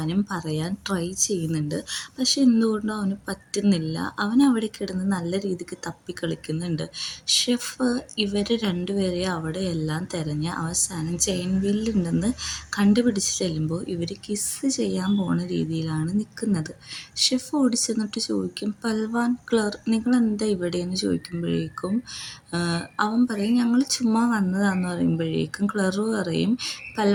പറയാൻ ട്രൈ ചെയ്യുന്നുണ്ട്. പക്ഷെ എന്തുകൊണ്ടോ അവന് പറ്റുന്നില്ല. അവൻ അവിടെ കിടന്ന് നല്ല രീതിക്ക് തപ്പിക്കളിക്കുന്നുണ്ട്. ഷെഫ് ഇവർ രണ്ടുപേരെ അവിടെയെല്ലാം തിരഞ്ഞ് അവസാനം ചെയിൻവില്ലുണ്ടെന്ന് കണ്ടുപിടിച്ച് ചെല്ലുമ്പോൾ ഇവർ കിസ്സ് ചെയ്യാൻ പോണ രീതിയിലാണ് നിൽക്കുന്നത്. ഷെഫ് ഓടിച്ചെന്നിട്ട് ചോദിക്കും, പൽവാൻ, ക്ലർ, നിങ്ങളെന്താ ഇവിടെയെന്ന് ചോദിക്കുമ്പോഴേക്കും അവൻ പറയും, ഞങ്ങൾ ചുമ്മാ വന്നതാന്ന് പറയുമ്പോഴേക്കും ക്ലറ് പറയും,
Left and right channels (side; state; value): both; identical; correlation 1.00